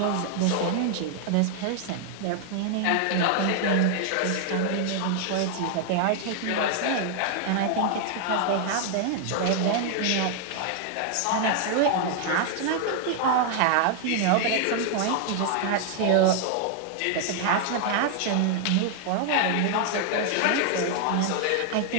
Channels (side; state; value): both; different; correlation 0.00